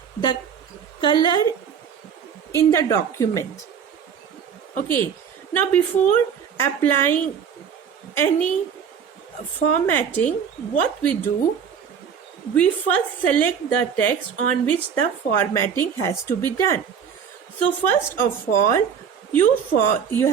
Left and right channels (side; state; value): left; quieter; 7.5 dB